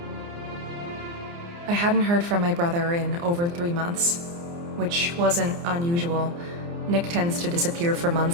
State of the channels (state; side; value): late; left; 29 ms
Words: I hadn't heard from my brother in over 3 months, which wasn't unusual. Nick tends to disappear for